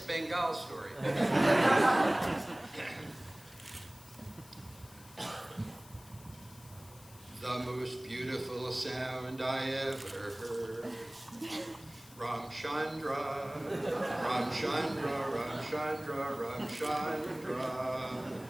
Bengal Story. The most beautiful sound I ever heard. Ramchandra, Ramchandra, Ramchandra, Ramchandra.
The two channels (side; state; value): left; noise; hiss, 21 dB below the sound